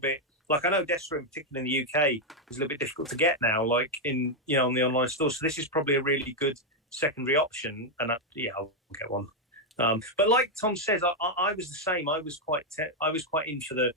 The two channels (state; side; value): normal; both; correlation 0.01